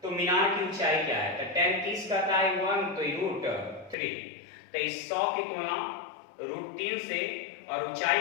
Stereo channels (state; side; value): drops out; right; at 4.0 s